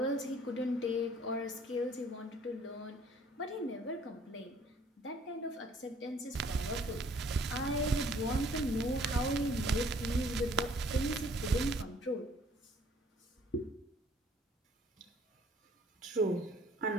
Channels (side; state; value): both; normal; correlation 0.58